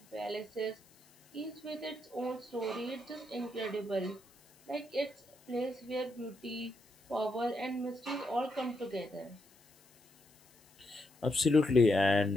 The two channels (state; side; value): noise; left; hiss, 28 dB below the sound